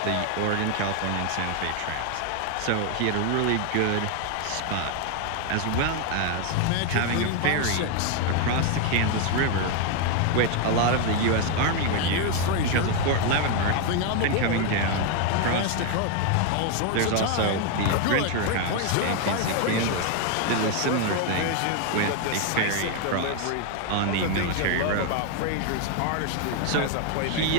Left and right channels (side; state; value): both; different; correlation 0.01